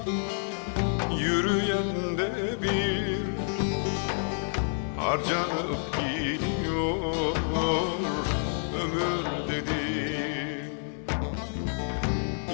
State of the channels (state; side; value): silent; right; digital silence